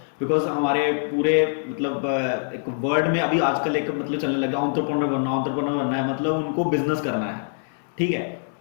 बिकॉज हमारे पूरे मतलब एक वर्ल्ड में अभी आजकल एक मतलब चलने लगा एंटरप्रेन्योर बनना है, मतलब उनको बिजनेस करना है। ठीक है।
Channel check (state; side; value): silent; right; digital silence